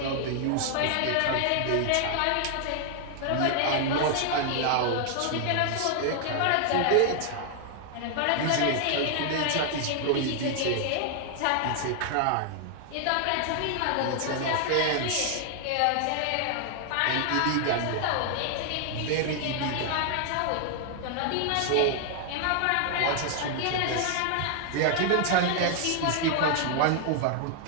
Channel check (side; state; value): both; different; correlation 0.00